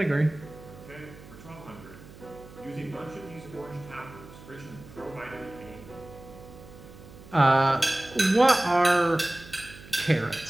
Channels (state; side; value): noise; right; hum, 19 dB below the sound